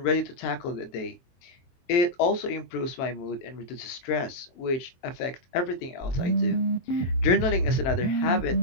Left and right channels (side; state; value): right; late; 23 ms